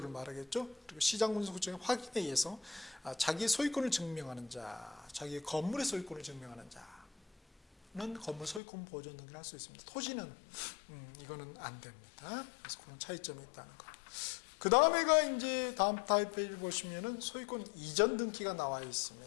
말하겠죠. 그리고 시장군수구청의 확인에 의해서 자기의 소유권을 증명하는 자, 자기의 건물의 소유권을 증명하는 자는 건물 소유권 보존 등기를 할 수 있습니다. 토지는 이거는 안 됩니다. 그래서 그런 차이점이 있다는 거. 그 다음에가 이제 다음 타입 페이지 보시면은 소유권 이전 등기가 나와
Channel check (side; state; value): right; drops out; at 8.6 s